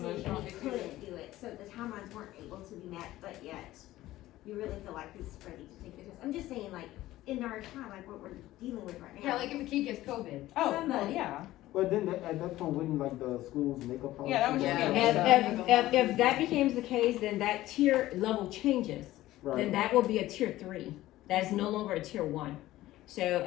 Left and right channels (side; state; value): right; quieter; 15.8 dB